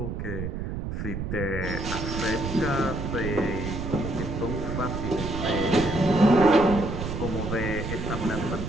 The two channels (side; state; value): right; noise; rumble, 4 dB below the sound